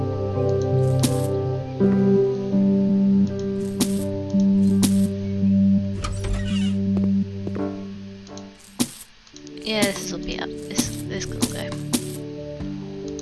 Yeah, this will be up. This can go.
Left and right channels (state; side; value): identical; both; correlation 1.00